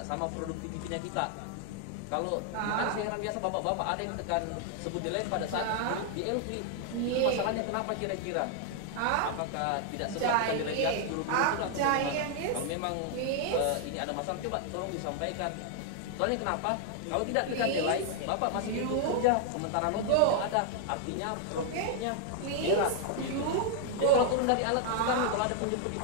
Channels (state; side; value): different; both; correlation 0.00